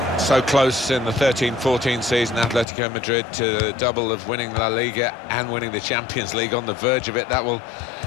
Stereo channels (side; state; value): right; drops out; at 2.7 s